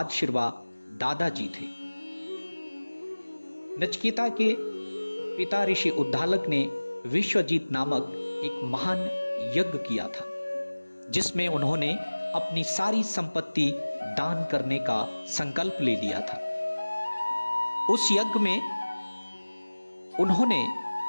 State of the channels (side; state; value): both; inverted; correlation -1.00